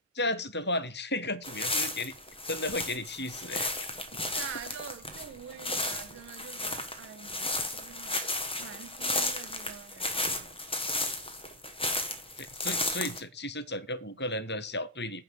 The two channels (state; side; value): normal; both; correlation -0.04